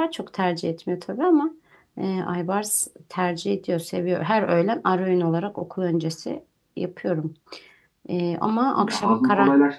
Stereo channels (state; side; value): identical; both; correlation 1.00